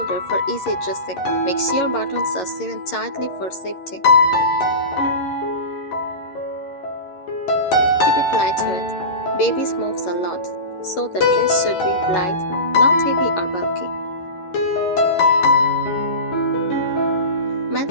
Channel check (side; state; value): right; late; 11 ms